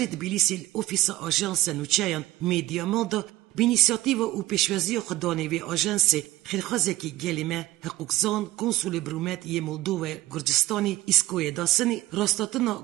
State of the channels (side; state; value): left; quieter; 16.8 dB